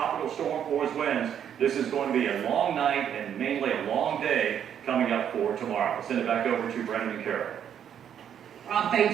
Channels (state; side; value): quieter; left; 9.1 dB